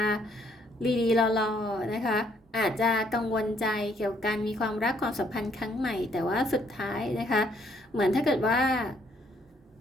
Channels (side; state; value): both; normal; correlation 0.68